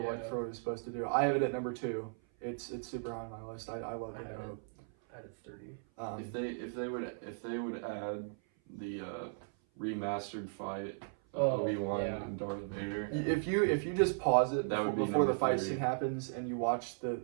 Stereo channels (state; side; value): silent; left; 53 dB below the other